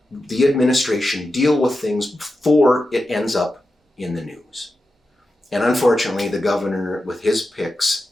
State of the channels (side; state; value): both; normal; correlation 0.91